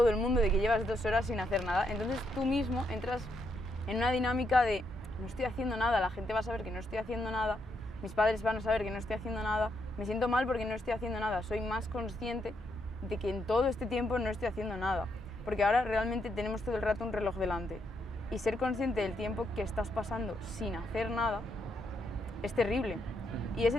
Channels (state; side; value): normal; both; correlation 0.77